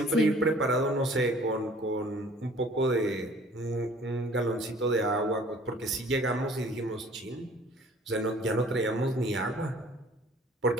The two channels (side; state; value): both; normal; correlation 0.52